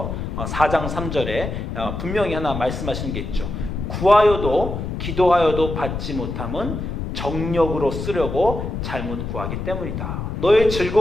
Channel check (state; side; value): noise; left; rumble, 5 dB below the sound